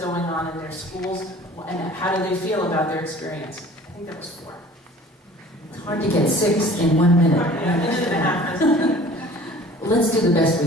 on in their schools? And how do they feel about their experience? I think that was 4. It's hard to get 6 in 1 minute. Let's do the best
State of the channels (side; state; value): both; normal; correlation 0.48